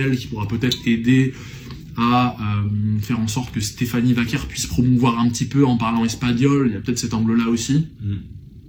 qui pourra peut-être aider à faire en sorte que Stéphanie Vaquer puisse promouvoir un petit peu en parlant espagnol, il y a peut-être cet angle là aussi.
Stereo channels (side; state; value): both; identical; correlation 1.00